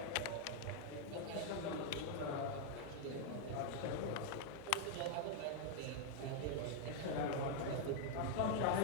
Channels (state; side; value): different; both; correlation 0.00